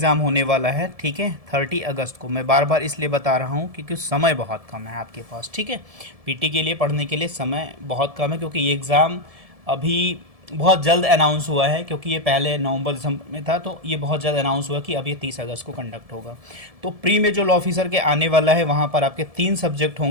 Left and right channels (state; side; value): late; left; 1.7 ms